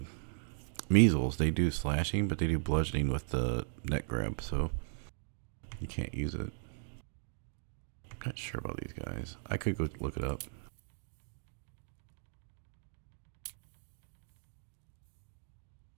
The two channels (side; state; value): left; silent; digital silence